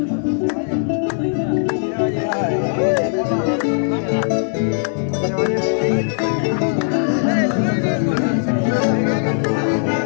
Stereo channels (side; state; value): right; silent; digital silence